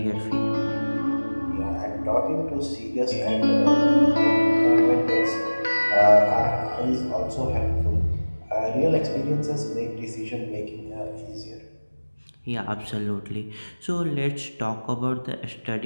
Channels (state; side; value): inverted; both; correlation -1.00